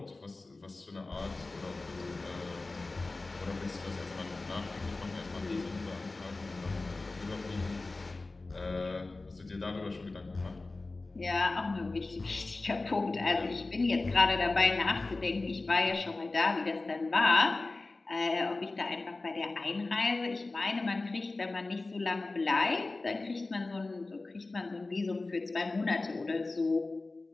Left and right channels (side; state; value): right; quieter; 3.3 dB